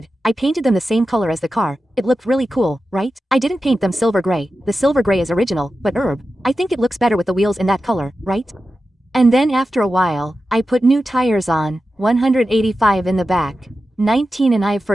I painted them the same color as the car, it looked really cool, right? I didn't paint them silver gray, the silver gray is original, but herb, I think it looks better with the wheels in that color, right? And then after a while, I put new tires on, 185 in the back, 19 and I've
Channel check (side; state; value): both; normal; correlation 0.92